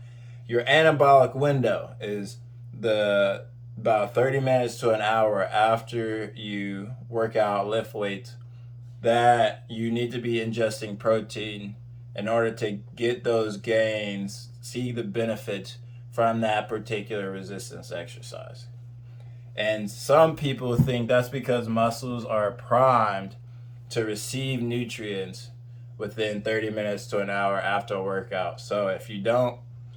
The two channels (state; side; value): identical; both; correlation 1.00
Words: Your anabolic window is the about 30 minutes to an hour after you work out, lift weights, that you need to be ingesting protein in order to get those gains, see the benefits from that particular resistance exercise. And some people think that's because muscles are primed to receive nutrients within 30 minutes to an hour after a workout. So if you don't